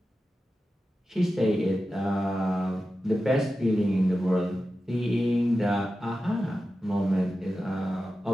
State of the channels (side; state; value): both; normal; correlation 0.92